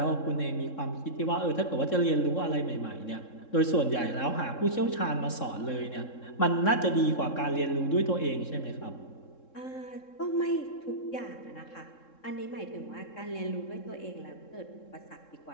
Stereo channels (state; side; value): late; right; 3.7 ms